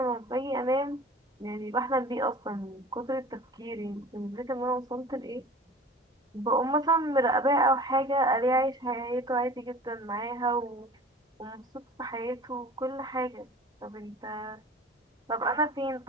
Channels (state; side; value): normal; both; correlation 0.42